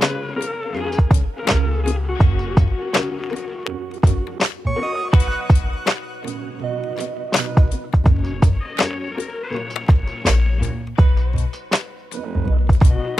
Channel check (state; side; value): normal; both; correlation 0.93